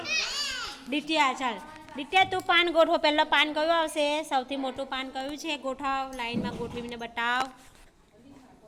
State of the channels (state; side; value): identical; both; correlation 1.00